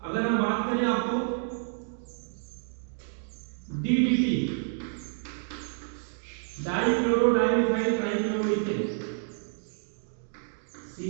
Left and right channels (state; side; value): silent; left; digital silence